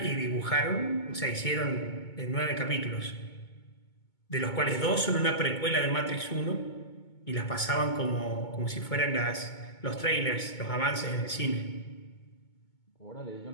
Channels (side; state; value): right; late; 2.2 ms